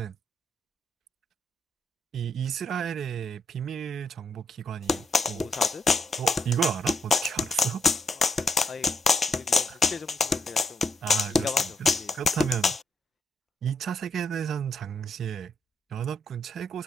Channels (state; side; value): normal; both; correlation 0.76